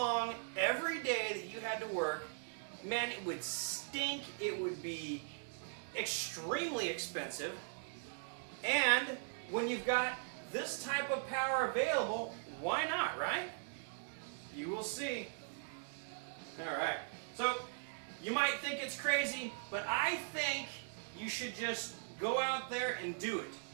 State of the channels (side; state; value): left; silent; digital silence